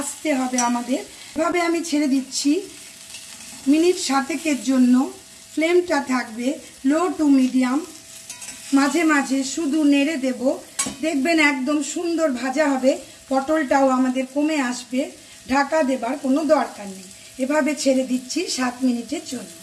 হবে আমাদের। এভাবে আমি ছেড়ে দিচ্ছি মিনিট 7-এর জন্য। ফ্লেমটা থাকবে লো টু মিডিয়াম। মাঝে মাঝে শুধু নেড়ে দেব, দেখবেন একদম সুন্দর ভাজা হবে। পটলটাও আমাদের কমে আসবে, ঢাকা দেবার কোনো দরকার নেই। এভাবে ছেড়ে দিচ্ছি 7 মিনিটের জন্য।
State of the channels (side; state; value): both; identical; correlation 1.00